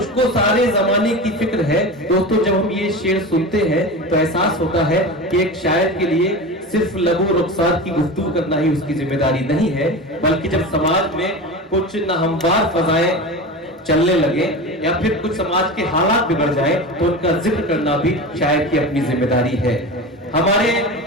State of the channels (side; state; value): both; normal; correlation 0.28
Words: सारे जमाने की फिक्र है। दोस्तों जब हम ये शेर सुनते हैं तो एहसास होता है कि एक शायर के लिए सिर्फ लबो रुखसार की गुफ्तगू करना ही उसकी जिम्मेदारी नहीं है, बल्कि जब समाज में कुछ नाहमवार फजाएं चलने लगे या फिर कुछ समाज के हालात बिगड़ जाए तो उनका जिक्र करना भी शायर की अपनी जिम्मेदारी है। हमारे